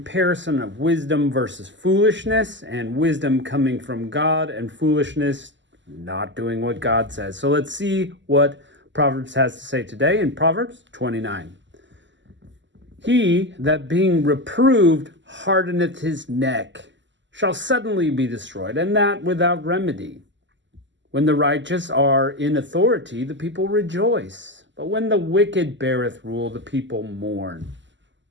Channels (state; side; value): late; left; 0.54 ms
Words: of wisdom versus foolishness, and wisdom coming from God and foolishness not doing what God says. So let's see what Proverbs has to say today in Proverbs 29. He that being reproved hardeneth his neck shall suddenly be destroyed, and that without remedy. When the righteous are in authority, the people rejoice. But when the wicked beareth rule, the people mourn.